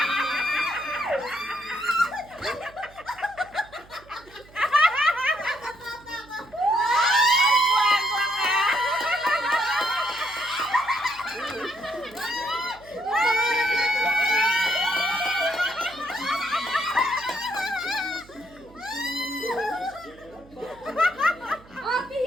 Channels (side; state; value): right; noise; hum, 24 dB below the sound